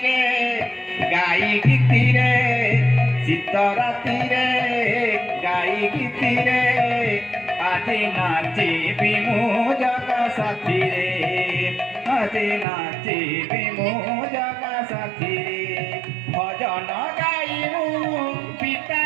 গাই গীতিরে শীত রাতিরে গাই গীতিরে আজি নাচিবি মু জগা সাথীরে আজি নাচিবি মু জগা সাথীরে ভজন গাইমু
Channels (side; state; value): left; drops out; at 12.7 s